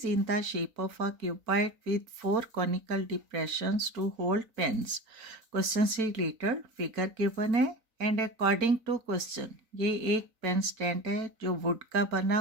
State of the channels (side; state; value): left; late; 4.4 ms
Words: in the shape of a cuboid with 4 conical depressions to hold pens. Question से रिलेटेड फिगर गिवन है एंड अकॉर्डिंग टू क्वेश्चन ये एक पेन स्टैंड है जो वुड का बना